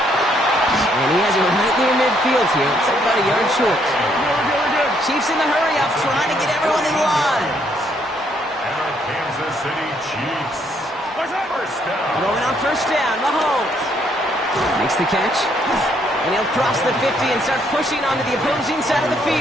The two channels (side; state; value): both; normal; correlation 0.70